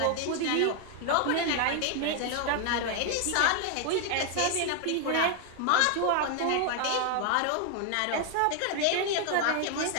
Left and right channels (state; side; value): different; both; correlation 0.00